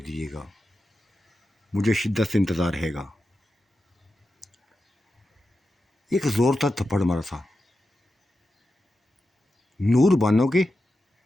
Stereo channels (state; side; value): normal; both; correlation 0.90